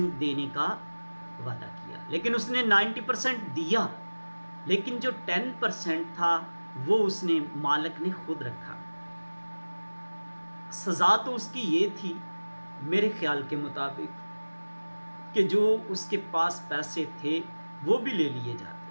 देने का वादा किया। लेकिन उसने 90% दिया, लेकिन जो 10% था वो उसने मालिक ने खुद रखा। सज़ा तो उसकी ये थी मेरे ख्याल के मुताबिक कि जो उसके पास पैसे थे वो भी ले लिए जाते।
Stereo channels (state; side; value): inverted; both; correlation -1.00